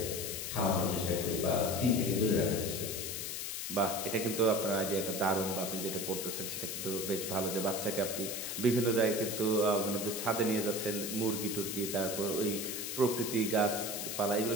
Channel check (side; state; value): left; noise; hiss, 4 dB below the sound